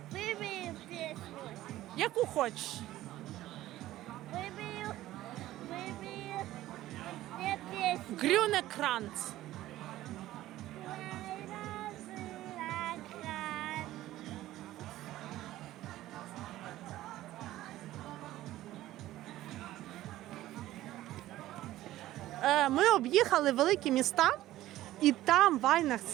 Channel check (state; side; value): quieter; left; 15.0 dB